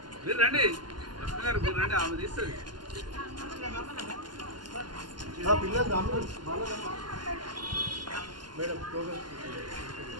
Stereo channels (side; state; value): left; late; 0.71 ms